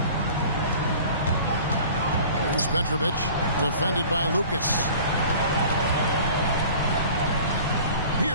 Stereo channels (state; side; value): inverted; both; correlation -0.45